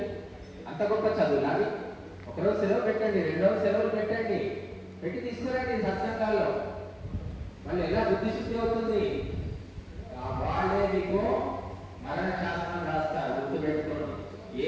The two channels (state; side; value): identical; both; correlation 1.00